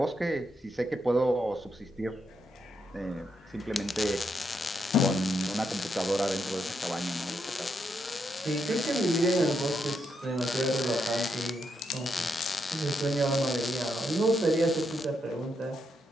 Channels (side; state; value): both; normal; correlation 0.80